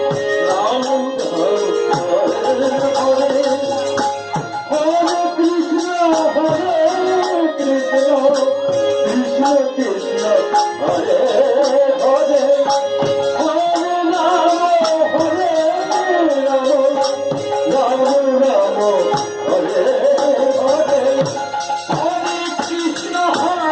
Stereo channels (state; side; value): identical; both; correlation 1.00